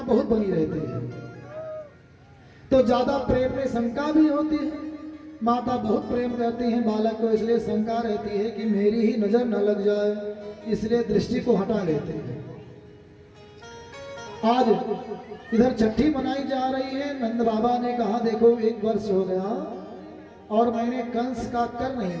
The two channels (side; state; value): both; identical; correlation 1.00